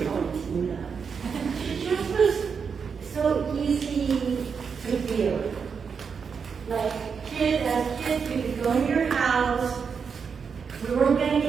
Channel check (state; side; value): quieter; left; 6.1 dB